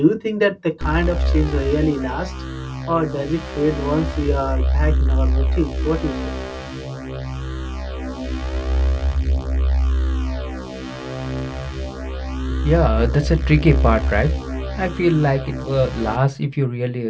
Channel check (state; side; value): identical; both; correlation 1.00